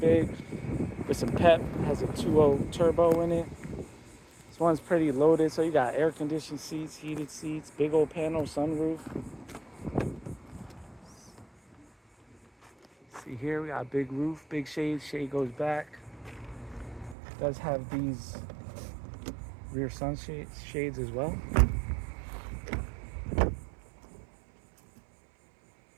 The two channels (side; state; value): left; drops out; at 17.2 s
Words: with some pep, has a 2.0 turbo in it. This one's pretty loaded, so you got air conditioned seats, heated seats, big old panel, sunroof. See here, we got a big roof, big shade goes back. It does have these rear shades as well.